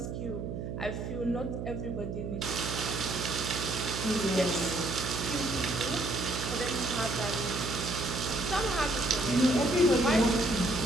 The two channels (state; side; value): noise; right; hum, 5 dB below the sound